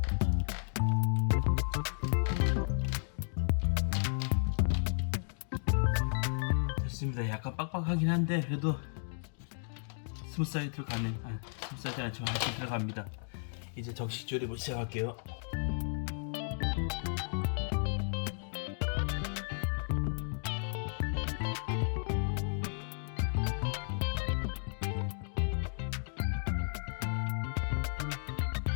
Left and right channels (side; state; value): right; silent; digital silence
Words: 약간 빡빡하긴 한데 그래도 스무스하게 들어가는 스무스하지 않지만 하여튼 들어갑니다. 이제 정식 조립을 시작할게요.